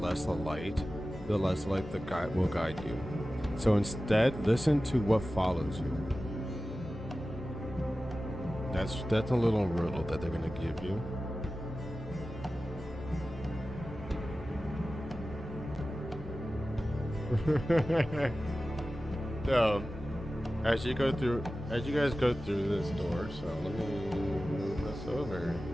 the light the guide will guide you. So instead, listen to what follows you. That's a little riddle that they're gonna give you. So, as you guys go through this door, so let me move this over.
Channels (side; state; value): both; normal; correlation 0.95